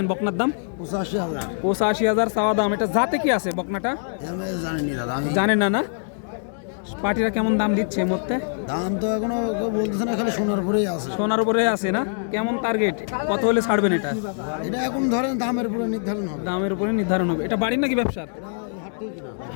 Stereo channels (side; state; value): right; silent; digital silence